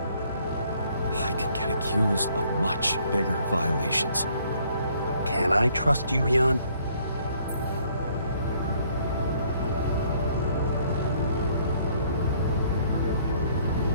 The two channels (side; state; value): both; inverted; correlation -0.64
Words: I could get accused of much bigger violations. Can I trust you, Jan?